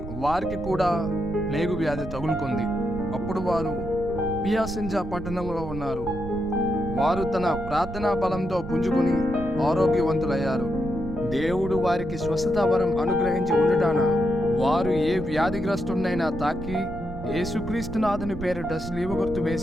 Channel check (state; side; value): noise; right; rumble, 10 dB below the sound